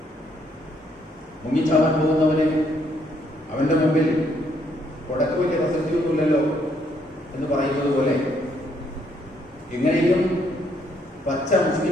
മുങ്ങിച്ചാവാൻ പോകുന്നവന് അവന്റെ മുമ്പിൽ കൊടക്ക് വലിയ പ്രസക്തിയൊന്നുമില്ലല്ലോ എന്ന് പറയുന്നത് പോലെ എങ്ങനെയും പച്ച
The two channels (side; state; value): both; normal; correlation 0.71